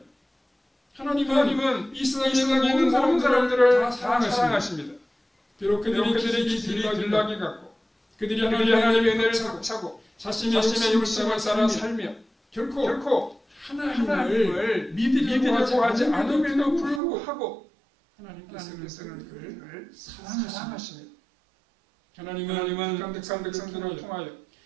하나님은 이 세상에 있는 모든 사람들을 다 사랑하십니다. 비록 그들이 들락이 같고 그들이 하나님의 은혜를 차고 자신의 욕심을 따라 살며 결코 하나님을 믿으려고 하지 않음에도 불구하고 하나님께서는 그들을 사랑하십니다. 하나님은 백성들을 통하여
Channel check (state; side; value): drops out; left; at 17.0 s